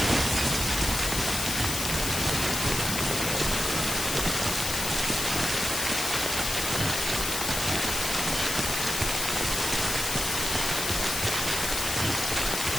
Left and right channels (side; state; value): left; noise; hiss, 2 dB below the sound